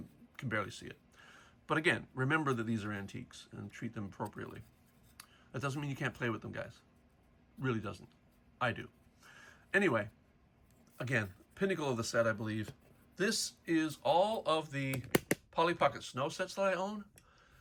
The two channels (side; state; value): both; identical; correlation 1.00